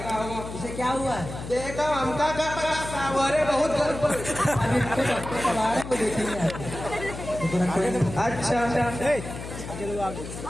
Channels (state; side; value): noise; left; hum, 10 dB below the sound